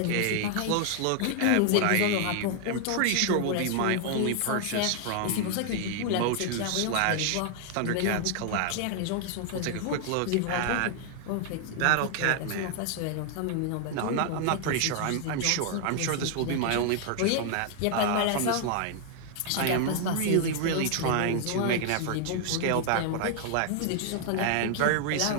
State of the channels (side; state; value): both; different; correlation 0.00